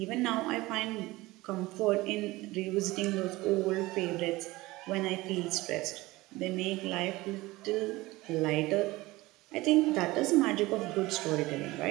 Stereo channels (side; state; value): left; quieter; 19.9 dB